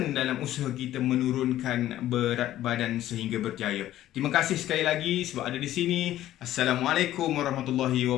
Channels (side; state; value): right; quieter; 13.4 dB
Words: dalam usaha kita menurunkan berat badan sehingga berjaya. Terima kasih sekali lagi sebab ada di sini. Assalamualaikum warahmatullahi